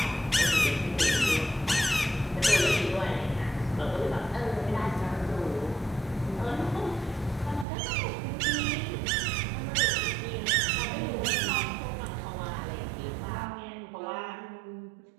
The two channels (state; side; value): drops out; left; at 7.7 s